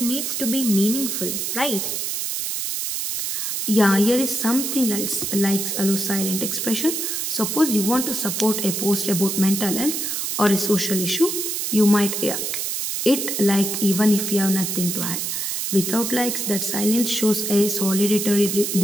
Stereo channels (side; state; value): right; noise; hiss, 2 dB below the sound